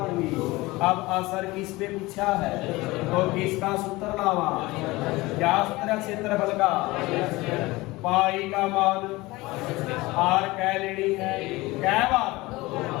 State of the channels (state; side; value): quieter; right; 20.9 dB